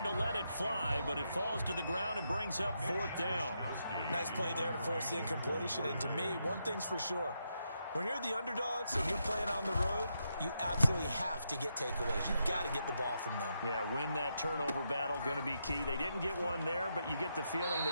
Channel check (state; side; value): inverted; both; correlation -0.82